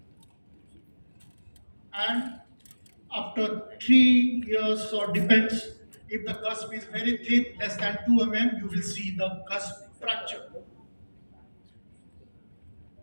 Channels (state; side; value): inverted; both; correlation -1.00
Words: And after 3 years, or depends, if the cusp is very thin, less than 2 mm, you will see the cusp fracture.